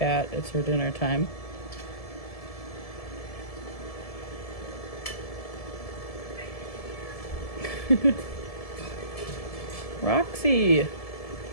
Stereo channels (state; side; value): late; right; 1.7 ms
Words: it's her dinner time. Roxy!